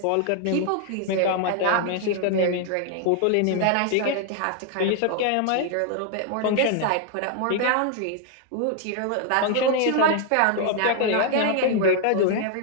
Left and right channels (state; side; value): different; both; correlation 0.00